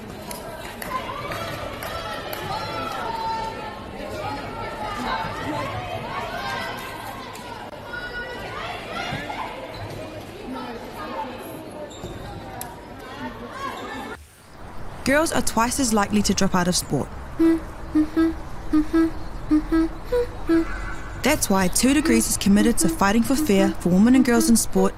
Girls are twice as likely to drop out of sport. That's why 2 Degrees is committed to fighting for fair for women and girls in sport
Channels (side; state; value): both; identical; correlation 1.00